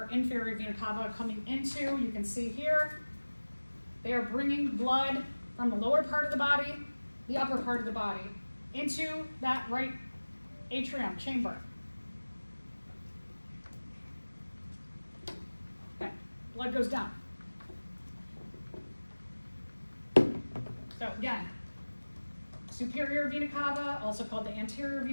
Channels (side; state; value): both; inverted; correlation -1.00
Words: inferior vena cava coming into, you can see here, they are bringing blood from the lower part of the body, the upper part of the body, into that right atrium chamber. Okay, blood goes down. So again, superior vena cava, also called the anterior